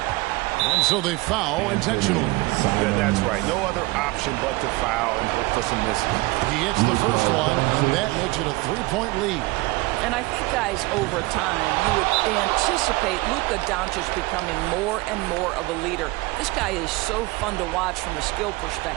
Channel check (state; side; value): quieter; left; 22.0 dB